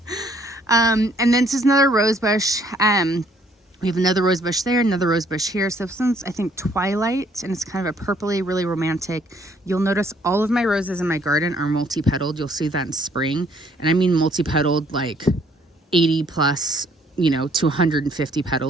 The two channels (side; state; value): both; normal; correlation 0.64